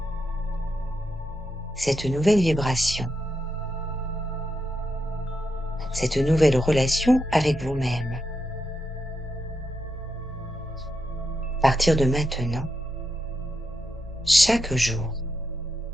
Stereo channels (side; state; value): both; normal; correlation 0.84